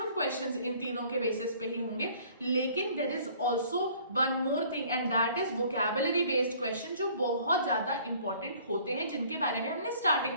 क्वेश्चंस इन तीनों के बेसिस पे ही होंगे, लेकिन there is also one more thing and that is vocabulary based question, जो बहुत ज्यादा इंपॉर्टेंट होते हैं, जिनके बारे में हमने स्टार्टिंग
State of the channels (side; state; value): both; inverted; correlation -0.55